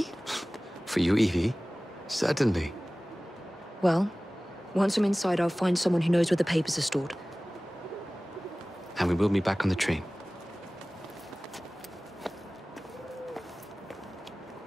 For you, Evie? Certainly. Well, once I'm inside, I'll find someone who knows where the papers are stored. And we will be back on the train.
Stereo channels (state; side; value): normal; both; correlation 0.98